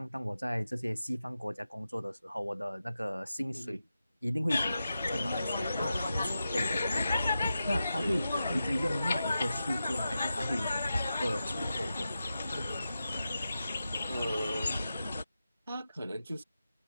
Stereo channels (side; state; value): both; inverted; correlation -0.91